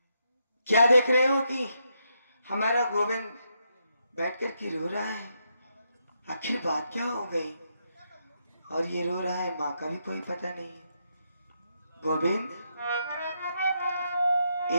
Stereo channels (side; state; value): both; inverted; correlation -0.80